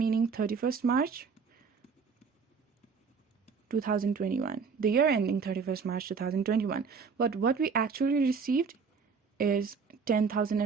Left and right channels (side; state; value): left; quieter; 5.6 dB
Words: 31st March 2021, the year ending 31st March 2021. But what we actually received is